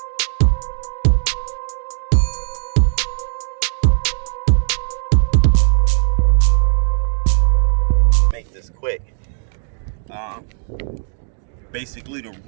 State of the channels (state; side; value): silent; left; 67 dB below the other